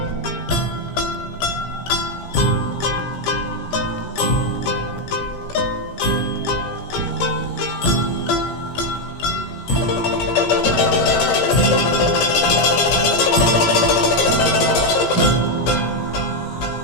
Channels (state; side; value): late; right; 17 ms